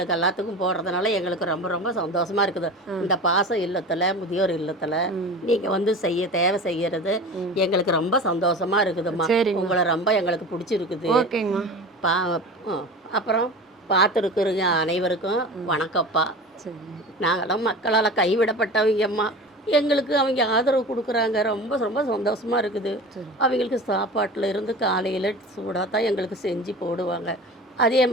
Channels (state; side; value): normal; both; correlation 0.34